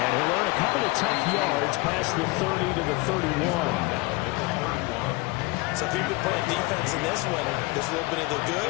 he'll earn a couple of tough yards past the 30 to the 31. So if you've been playing defense in this one, there's a little bit of the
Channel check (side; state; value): right; quieter; 23.6 dB